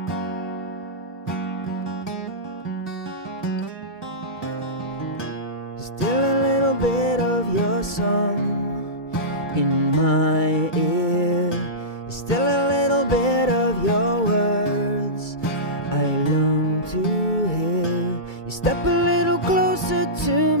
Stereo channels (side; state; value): right; late; 2.3 ms